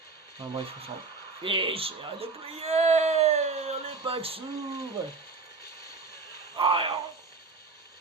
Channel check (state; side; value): quieter; left; 4.2 dB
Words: Enfin bref, on s'en fiche, à de prier, les packs s'ouvrent.